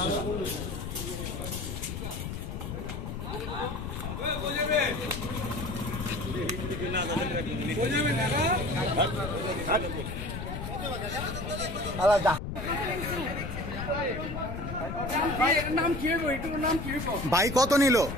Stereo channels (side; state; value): left; noise; rumble, 6 dB below the sound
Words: আলাদা ভাই কত নিল